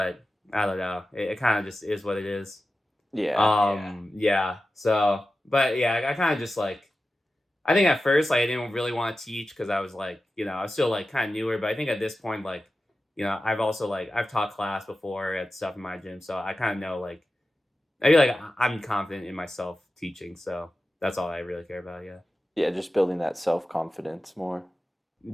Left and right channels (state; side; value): normal; both; correlation 0.93